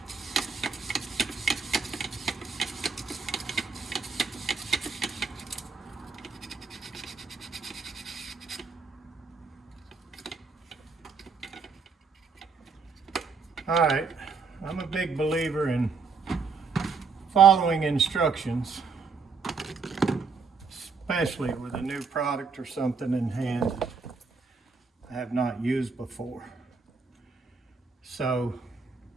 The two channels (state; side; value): quieter; left; 5.0 dB